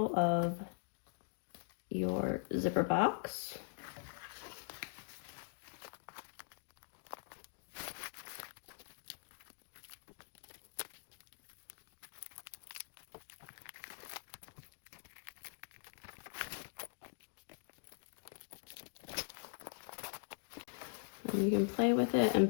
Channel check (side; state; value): right; silent; digital silence